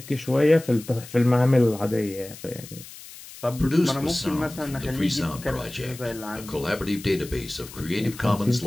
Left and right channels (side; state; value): left; noise; hiss, 16 dB below the sound